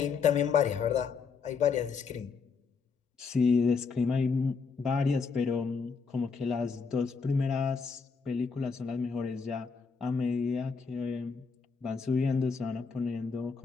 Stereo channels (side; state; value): right; quieter; 5.2 dB